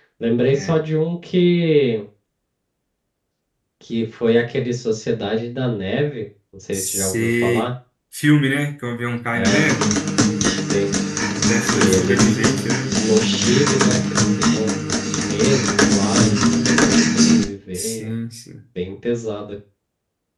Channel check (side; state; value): both; identical; correlation 1.00